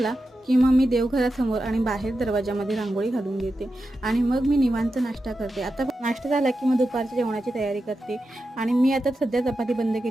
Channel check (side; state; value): both; normal; correlation 0.90